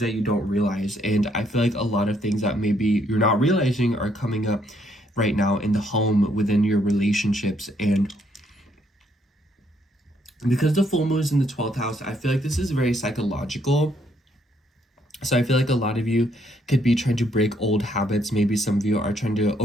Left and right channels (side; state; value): both; normal; correlation 0.71